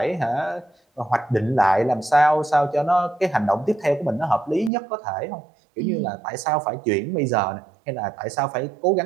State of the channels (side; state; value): left; drops out; at 4.7 s